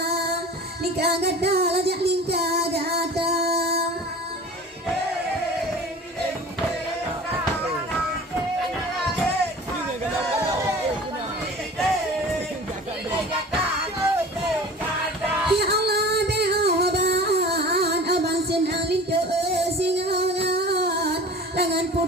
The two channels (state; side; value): normal; both; correlation 0.41